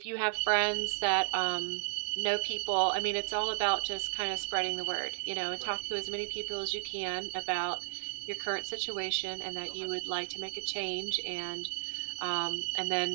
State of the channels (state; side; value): silent; left; 55 dB below the other